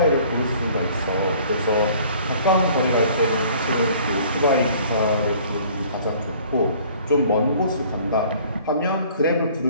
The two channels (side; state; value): both; inverted; correlation -0.53